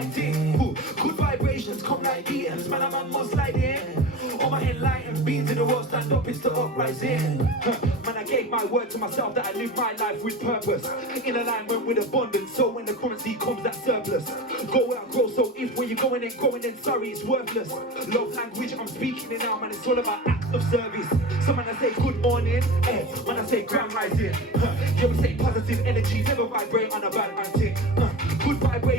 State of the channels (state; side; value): normal; both; correlation 0.30